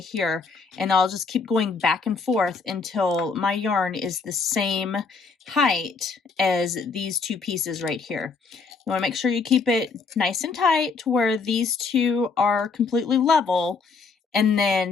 and I'll just keep going back and forth until my yarn is the same height as these two pieces right here. You want to make sure you keep it nice and tight to where these two are completely level, and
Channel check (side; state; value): right; quieter; 4.6 dB